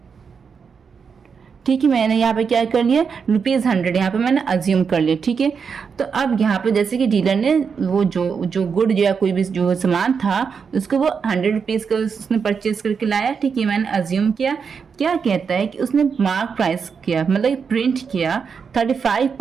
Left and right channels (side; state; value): left; quieter; 6.0 dB